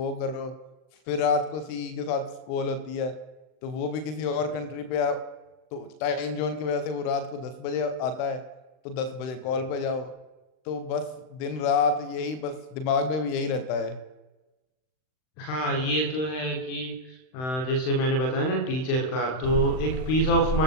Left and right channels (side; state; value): right; late; 39 ms